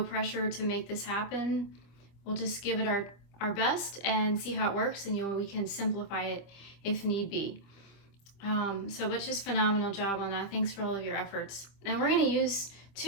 pressure to make this happen. We'll just give it our best and see how it works, and we can simplify it if need be. But just phenomenal job on that. Thanks for all of your efforts. And we're going to use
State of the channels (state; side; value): late; right; 25 ms